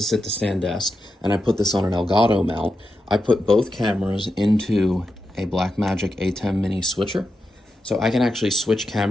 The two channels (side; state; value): both; normal; correlation 0.88